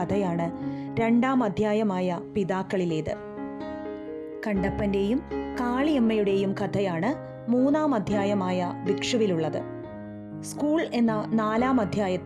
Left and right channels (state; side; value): identical; both; correlation 1.00